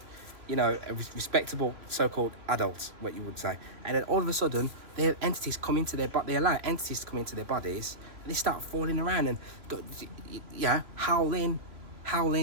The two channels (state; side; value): late; left; 3.2 ms